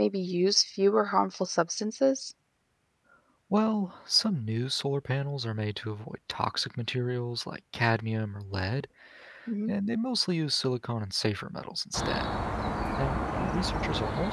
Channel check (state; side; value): identical; both; correlation 1.00